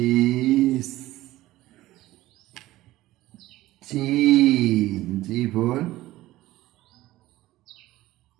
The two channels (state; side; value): quieter; left; 16.6 dB